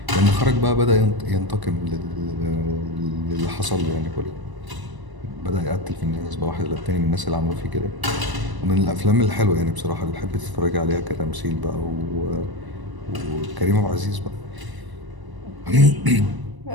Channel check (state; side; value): late; left; 1.0 ms